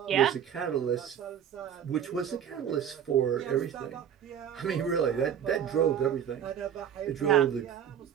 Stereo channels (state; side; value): quieter; left; 9.0 dB